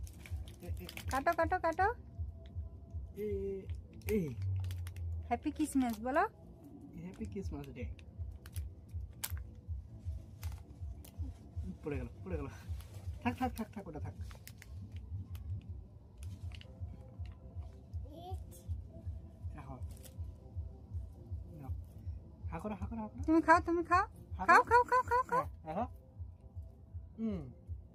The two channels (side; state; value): both; identical; correlation 1.00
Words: কাটো কাটো কাটো। এই হ্যাপি ক্রিসমাস বলো। Happy Christmas day. পড়ে গেল, পড়ে গেল। থাক থাক থাক থাক, ওটা থাক। রাখো। নাও। হা করো, হা করো, হা করো। তুমি খাও, তুমি খাও, খাও খাও খাও খাও খাও। রাখো।